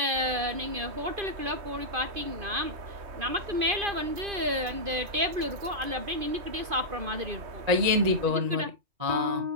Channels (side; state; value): left; late; 2.5 ms